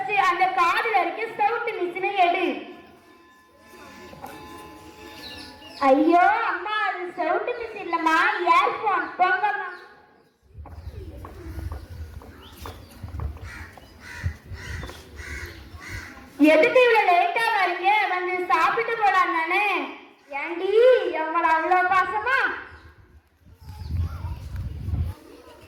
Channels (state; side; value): identical; both; correlation 1.00